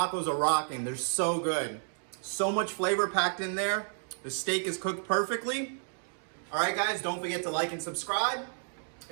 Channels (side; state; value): left; silent; 57 dB below the other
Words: are rocking. They're so good. So much flavor packed in there. The steak is cooked perfectly. All right, guys, don't forget to like and subscribe.